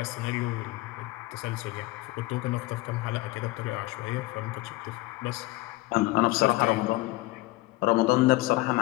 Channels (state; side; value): quieter; right; 19.3 dB